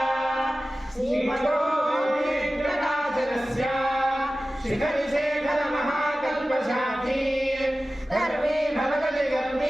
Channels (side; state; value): both; normal; correlation 0.96